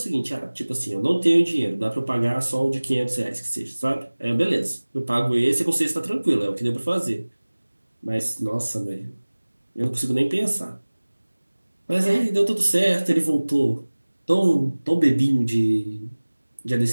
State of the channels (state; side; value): inverted; both; correlation -1.00